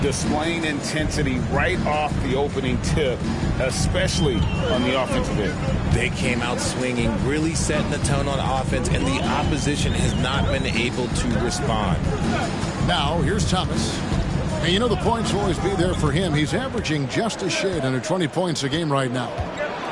Displaying intensity right off the opening tip, especially on the offensive end. They came out swinging, really setting the tone on offense, and the opposition has not been able to respond. Now, here's Thomas. And you know the points will always be there for him. He's averaging just a shade under 20 points a game right now.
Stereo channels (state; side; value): identical; both; correlation 1.00